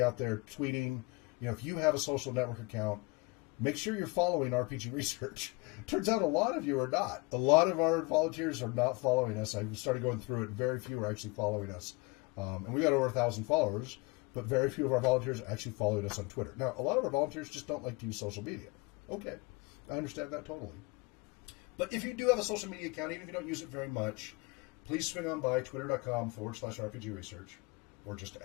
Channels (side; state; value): right; quieter; 26.4 dB